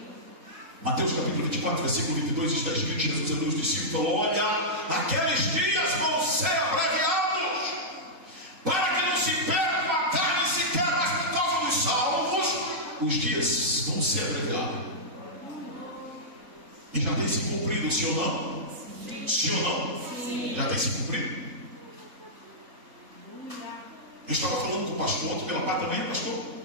Mateus capítulo 24, versículo 22, está escrito: Jesus é dos discípulos, falou: olha, aqueles dias vão ser abreviados, para que não se perca a carne sequer, mas por causa dos salvos, os dias vão ser abreviados. E já tem se cumprido, sim ou não? Sim ou não? Já tem se cumprido? Eu estava falando com o pastor ontem pela parte da manhã, pastor.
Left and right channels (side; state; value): left; late; 3.5 ms